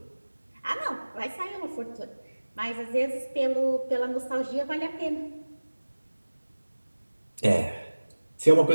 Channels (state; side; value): inverted; both; correlation -1.00